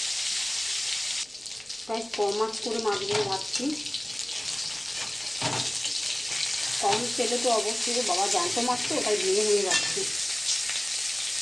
গাইস কম মাছ করে মাছগুলো ভাজছি, কম তেলে তো অবশ্যই। বাবা জ্যান্ত মাছ তো, ওটাই ভেঙে ভেঙে যাচ্ছে।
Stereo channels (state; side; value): noise; right; rumble, 29 dB below the sound